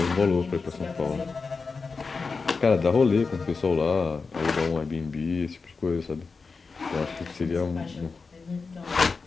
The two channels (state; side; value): quieter; right; 4.6 dB